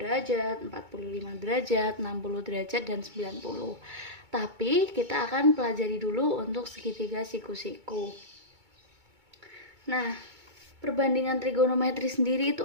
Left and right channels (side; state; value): left; late; 2.2 ms